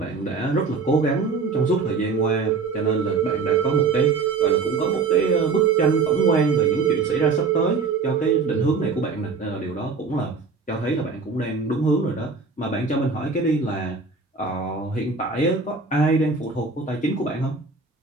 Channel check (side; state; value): left; quieter; 4.6 dB